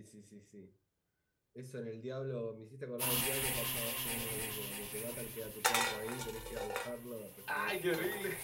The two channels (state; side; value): identical; both; correlation 1.00